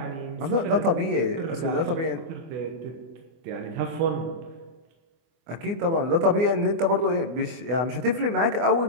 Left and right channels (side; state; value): left; late; 24 ms